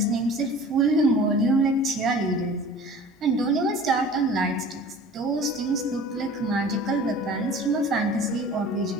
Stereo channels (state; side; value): normal; both; correlation 0.43